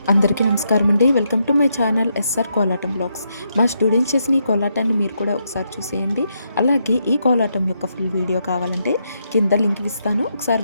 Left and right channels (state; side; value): inverted; both; correlation -0.80